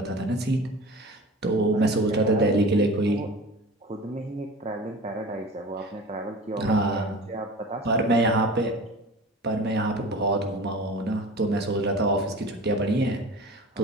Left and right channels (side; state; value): both; normal; correlation 0.37